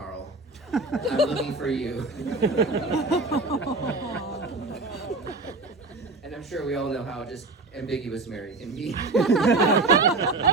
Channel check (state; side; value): quieter; left; 3.4 dB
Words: I'm looking for you." And I'm sure we all know how just ambiguous Mary can be.